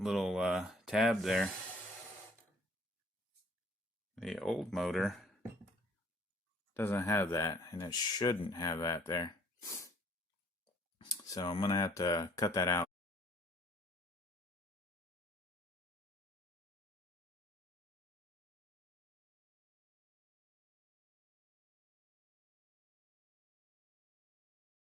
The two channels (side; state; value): both; normal; correlation 0.57